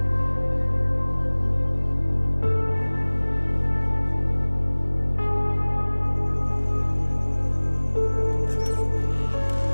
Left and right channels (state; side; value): inverted; both; correlation -1.00